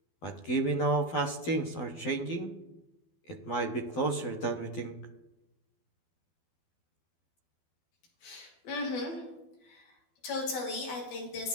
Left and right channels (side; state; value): right; late; 12 ms